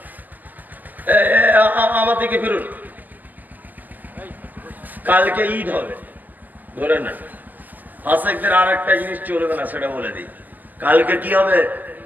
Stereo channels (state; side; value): late; left; 0.084 ms